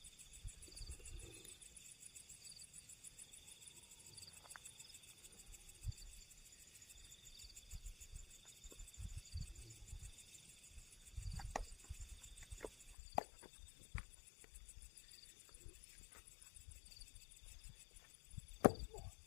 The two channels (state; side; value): drops out; right; at 13.0 s